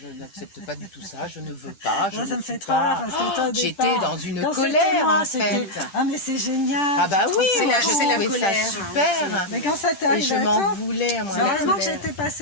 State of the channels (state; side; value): late; right; 10 ms